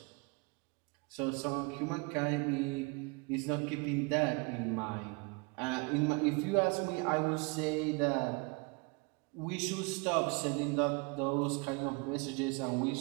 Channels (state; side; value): quieter; left; 30.1 dB